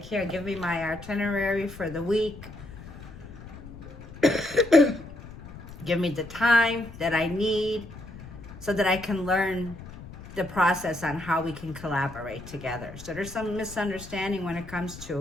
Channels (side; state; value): left; noise; rumble, 15 dB below the sound